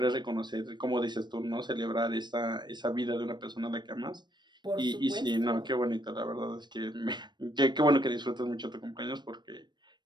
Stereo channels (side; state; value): left; late; 0.22 ms